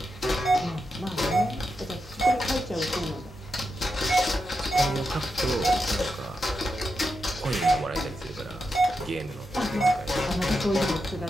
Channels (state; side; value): normal; both; correlation 0.86